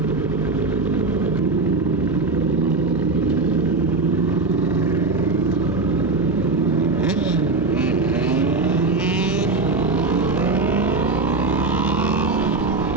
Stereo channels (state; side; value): quieter; left; 3.4 dB